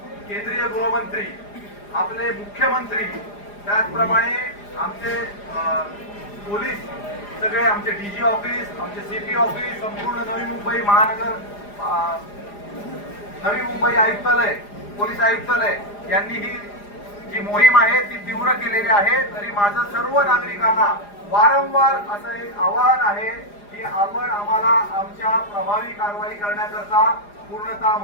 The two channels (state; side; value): late; right; 4.9 ms